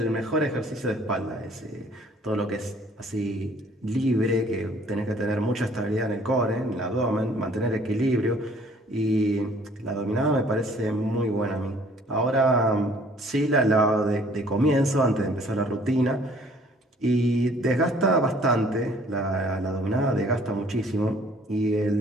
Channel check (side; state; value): both; normal; correlation 0.57